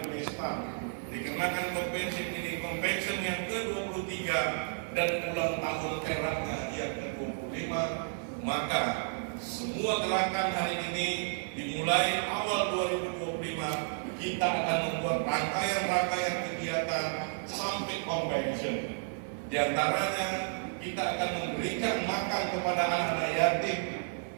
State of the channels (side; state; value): left; silent; 56 dB below the other